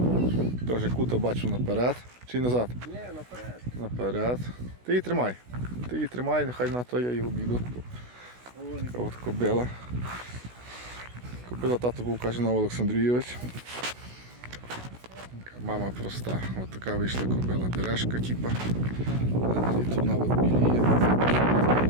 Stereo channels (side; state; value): left; late; 16 ms